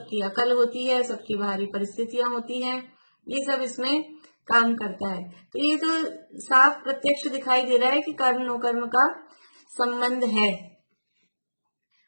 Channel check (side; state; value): both; inverted; correlation -1.00